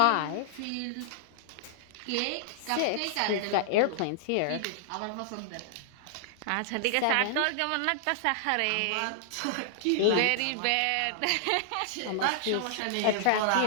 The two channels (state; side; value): different; both; correlation -0.01